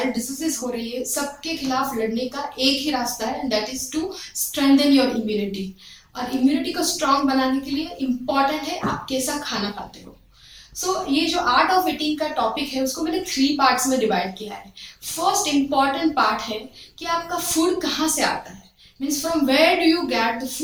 डिसीजेस हो रही है, सबके खिलाफ लड़ने का एक ही रास्ता है, and that is to strengthen your immunity. और इम्यूनिटी को स्ट्रांग बनाने के लिए इम्पॉर्टेंट है आप कैसा खाना खाते हो। ये जो आर्ट ऑफ ईटिंग का टॉपिक है उसको मैंने 3 पार्ट्स में डिवाइड किया है। फर्स्ट इम्पॉर्टेंट पार्ट है कि आपका फूड कहाँ से आता है, means from where do you get the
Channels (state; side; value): identical; both; correlation 1.00